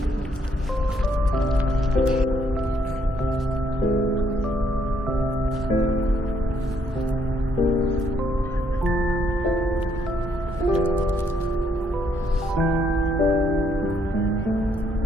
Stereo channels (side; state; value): both; normal; correlation 0.71